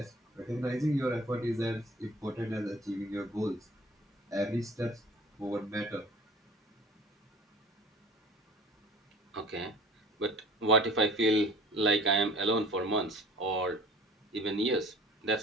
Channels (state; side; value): normal; both; correlation 0.46